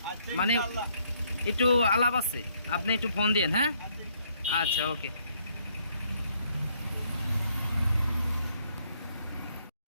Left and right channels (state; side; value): inverted; both; correlation -0.69